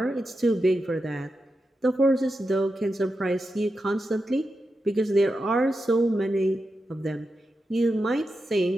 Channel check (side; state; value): both; normal; correlation 0.89